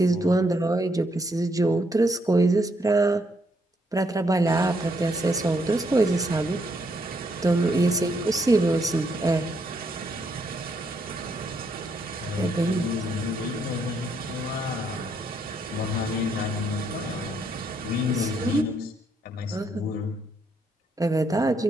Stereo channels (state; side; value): normal; both; correlation 0.74